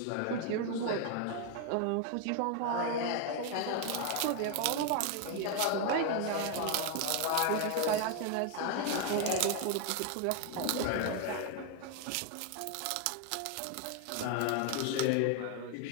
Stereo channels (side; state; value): both; different; correlation 0.01